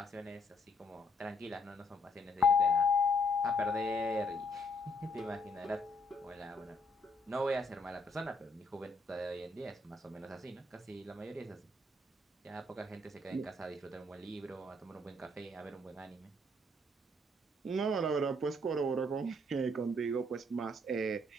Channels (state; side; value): normal; both; correlation 0.69